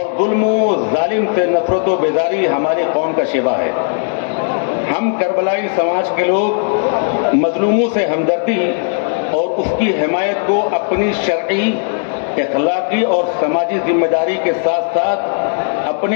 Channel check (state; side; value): silent; right; digital silence